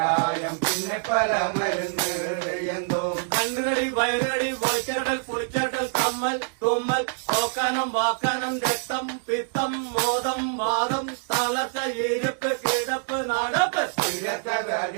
പിന്നെ പല മരുന്ന് തെയ്യന്തോം. കണ്ണുകടി വയറുകടി വലിച്ചുകടൽ കുളിച്ചുകെട്ടൽ കമ്മൽ തുമ്മൽ ഓക്കാനം വാക്കാനം രക്തം പിത്തം മോദം വാദം തളർച്ച ഇരിപ്പ് കിടപ്പ് നടപ്പ്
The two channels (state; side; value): silent; left; digital silence